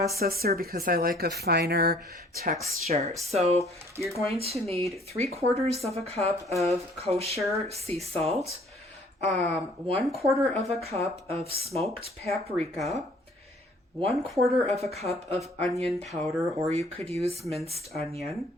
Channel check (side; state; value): both; normal; correlation 0.57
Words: because I like a finer texture. So you're going to need 3/4 of a cup of kosher sea salt, 1/4 of a cup of smoked paprika, 1/4 of a cup of onion powder, or you could use minced onion.